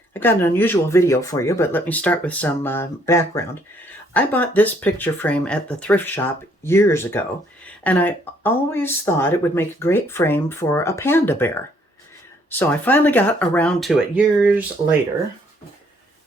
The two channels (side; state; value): both; normal; correlation 0.66